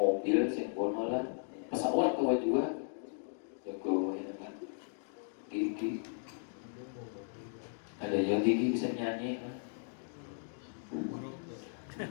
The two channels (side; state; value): right; silent; digital silence